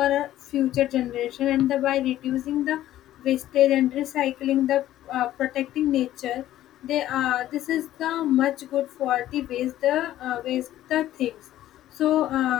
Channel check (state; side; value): quieter; right; 13.4 dB